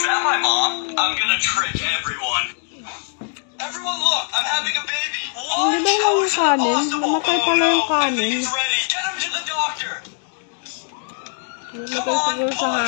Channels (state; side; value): silent; right; 56 dB below the other